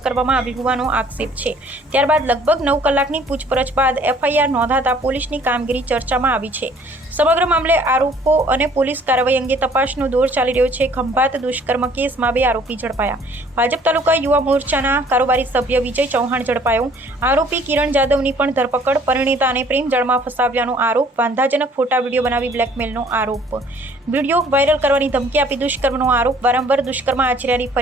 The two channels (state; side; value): normal; both; correlation 0.57